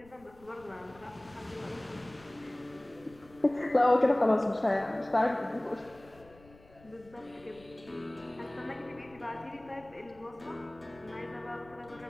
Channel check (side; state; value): left; noise; rumble, 25 dB below the sound